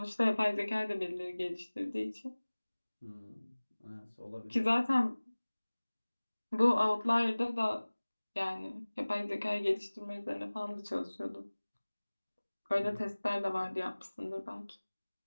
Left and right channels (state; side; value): inverted; both; correlation -1.00